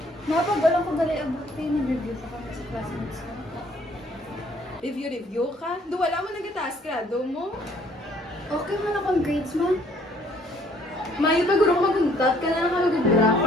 Napagalang ko gali abot kayo. Nag-review pa kami sa classmates ko. Review ka? Do wala mo nagataas ka, do mo? Okay man akong grades man. Mayo pa guro ko maguntat ka na nakamagbra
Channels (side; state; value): both; normal; correlation 0.61